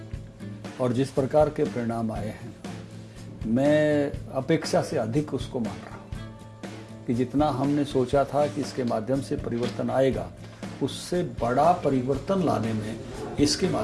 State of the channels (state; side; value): identical; both; correlation 1.00